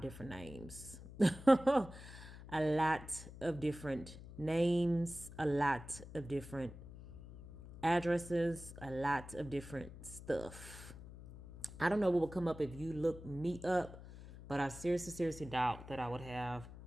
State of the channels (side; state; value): left; noise; hum, 15 dB below the sound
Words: different names. A lot of different names, a lot of different addresses, a lot of different stuff. I don't know what will come up if you look me up, but I seriously doubt that I would have